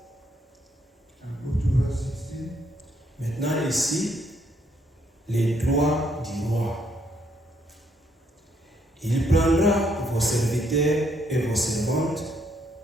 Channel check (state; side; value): normal; both; correlation 0.72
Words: And go to verse 16. Maintenant ici, les droits du roi. Il prendra vos serviteurs et vos servantes,